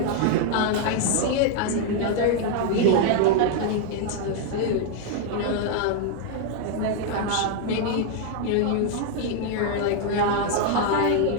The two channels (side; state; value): both; different; correlation 0.00